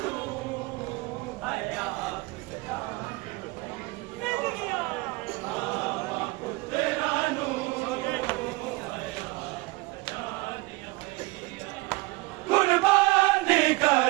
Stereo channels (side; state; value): left; quieter; 23.0 dB